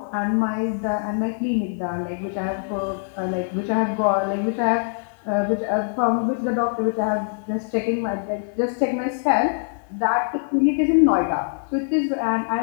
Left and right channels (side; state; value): right; silent; digital silence